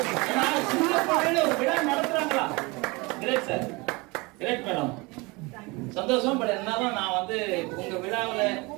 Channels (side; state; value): left; quieter; 25.8 dB